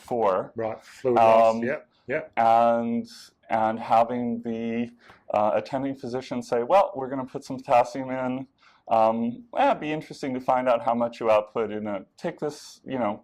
Right, fluid loss, yep. And having the attending physician say, well, we're going to put some potassium in. It'd be interesting to find out how much you output take this,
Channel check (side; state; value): both; identical; correlation 1.00